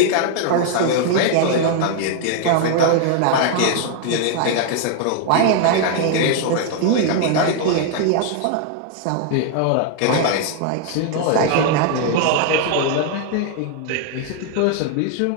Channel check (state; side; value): different; both; correlation 0.00